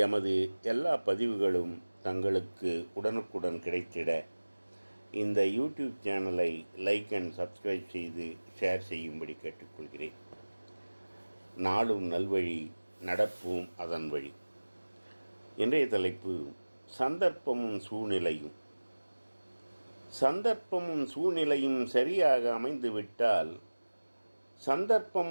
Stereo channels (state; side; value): inverted; both; correlation -1.00